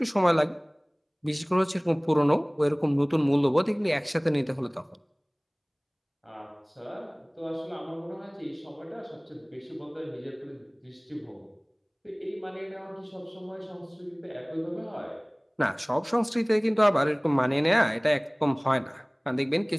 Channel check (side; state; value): both; identical; correlation 1.00